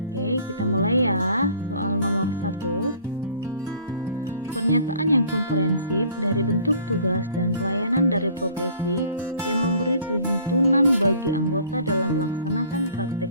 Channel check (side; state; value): both; inverted; correlation -0.53